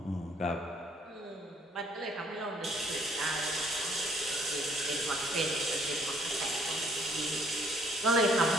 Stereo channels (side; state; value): both; normal; correlation 0.62